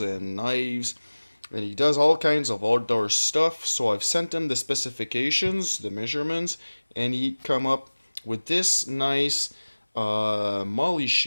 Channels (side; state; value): both; inverted; correlation -1.00